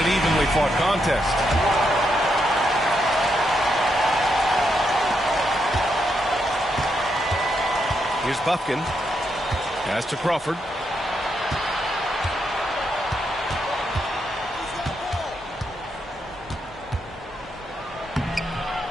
an evenly fought contest. Here's Buffkin. Pass to Crawford.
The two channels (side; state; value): both; normal; correlation 0.81